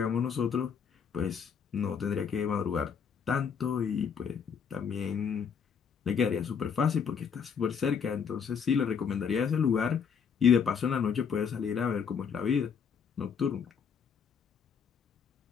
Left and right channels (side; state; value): right; quieter; 6.8 dB